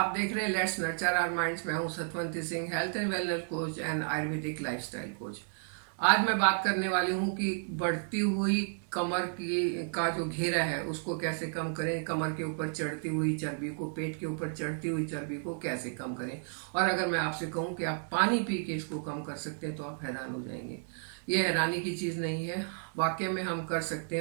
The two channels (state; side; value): silent; left; 56 dB below the other